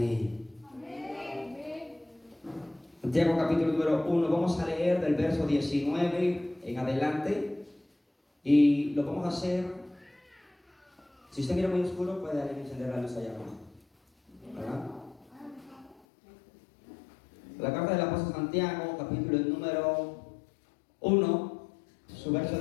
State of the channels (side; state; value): right; drops out; at 16.0 s